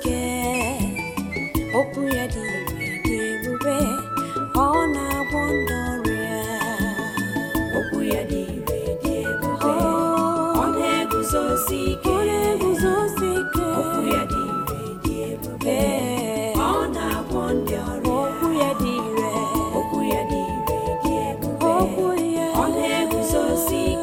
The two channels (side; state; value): both; identical; correlation 1.00